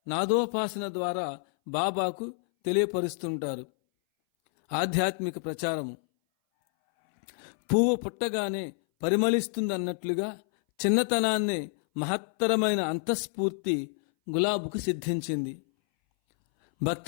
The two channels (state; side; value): silent; right; 59 dB below the other